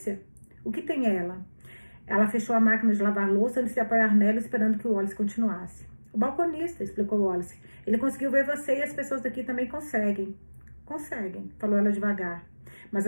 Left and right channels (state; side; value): inverted; both; correlation -1.00